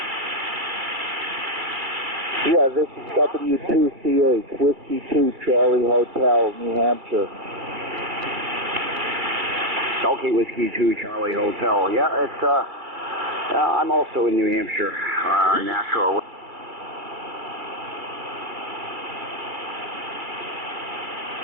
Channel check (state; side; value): late; left; 2.3 ms